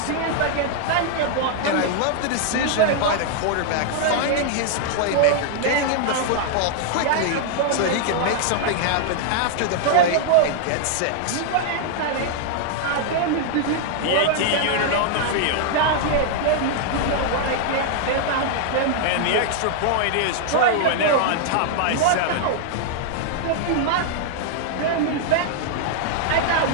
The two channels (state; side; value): different; both; correlation 0.00